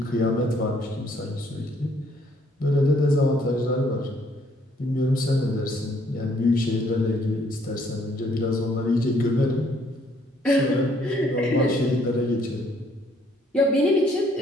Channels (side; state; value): both; normal; correlation 0.65